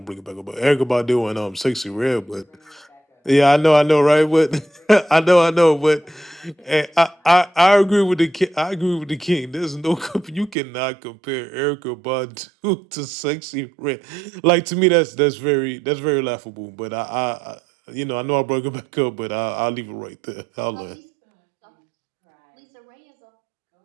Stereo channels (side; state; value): left; drops out; at 10.6 s